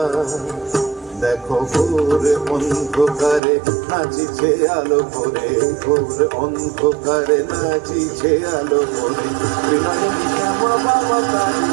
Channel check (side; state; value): left; drops out; at 3.4 s